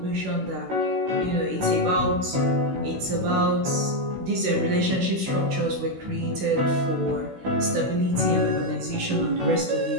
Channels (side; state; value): left; late; 16 ms